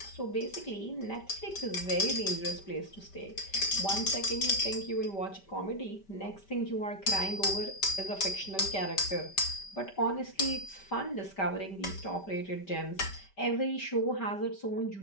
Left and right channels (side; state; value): right; late; 5.1 ms